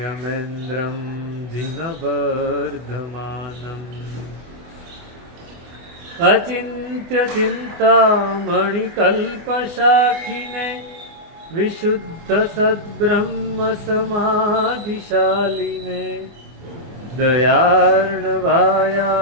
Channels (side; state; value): left; late; 24 ms